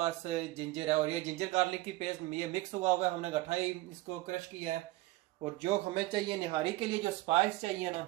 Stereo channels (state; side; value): quieter; left; 19.0 dB